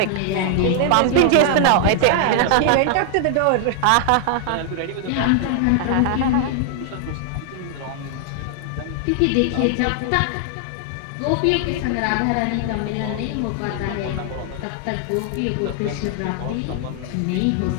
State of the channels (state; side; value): different; both; correlation 0.00